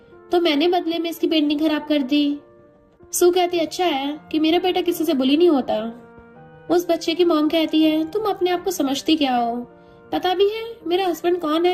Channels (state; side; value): identical; both; correlation 1.00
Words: तो मैंने बदले में इसकी पेंटिंग खराब कर दी। सू कहती अच्छा है कि मेरा बेटा किसी से बुली नहीं होता। उस बच्चे की मॉम कहती है तुम अपने आप को समझती क्या हो, पता भी है मेरा हस्बैंड कौन